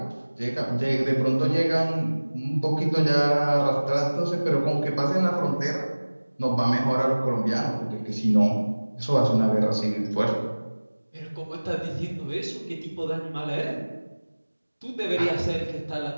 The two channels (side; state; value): both; inverted; correlation -1.00